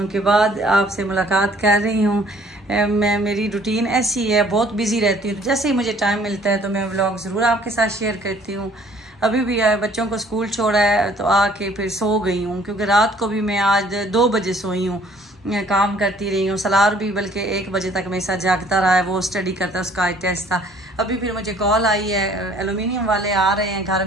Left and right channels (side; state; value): both; normal; correlation 0.57